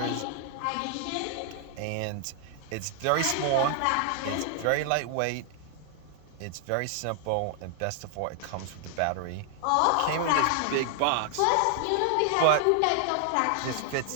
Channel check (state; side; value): different; both; correlation 0.00